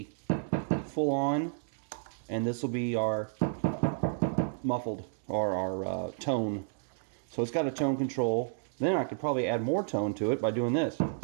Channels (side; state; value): left; silent; digital silence